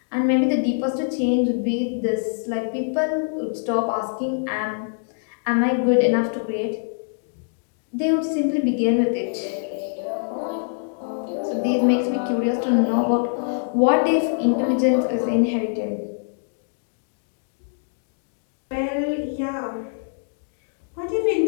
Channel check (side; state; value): right; silent; digital silence